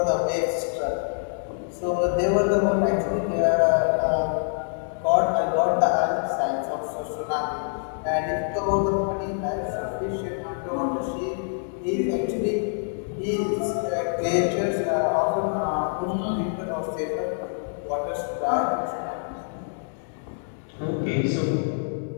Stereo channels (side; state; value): right; silent; digital silence